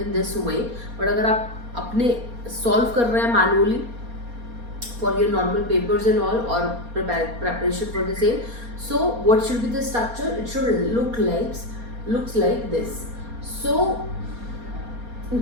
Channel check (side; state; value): left; late; 4.3 ms